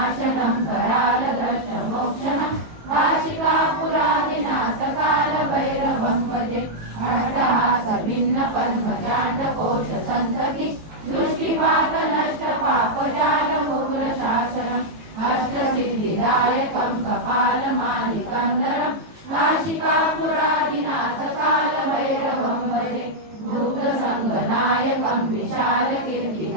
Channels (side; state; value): left; late; 18 ms